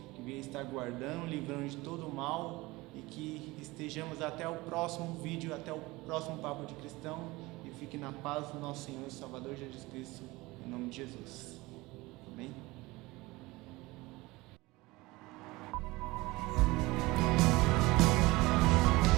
que venha estar guardando, livrando de todo o mal, e que estejamos até o próximo vídeo, até o próximo Papo de Cristão, e fique na paz do nosso Senhor e Salvador Jesus Cristo, em nome de Jesus.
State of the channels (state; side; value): quieter; left; 21.3 dB